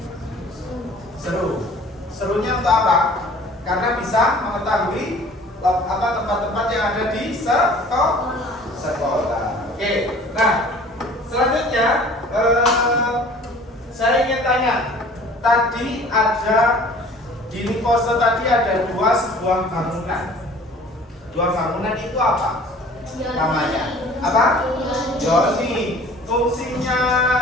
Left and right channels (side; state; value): both; normal; correlation 0.49